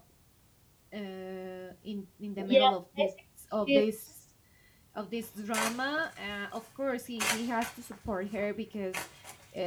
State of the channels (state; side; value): identical; both; correlation 1.00